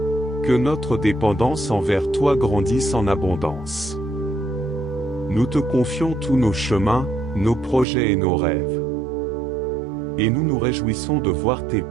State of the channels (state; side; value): drops out; left; at 7.9 s